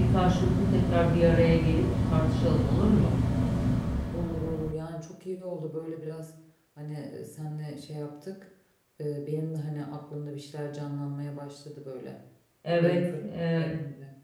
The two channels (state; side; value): identical; both; correlation 1.00